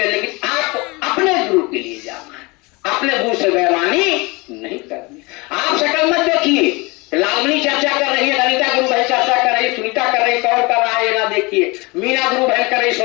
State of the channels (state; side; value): quieter; right; 25.7 dB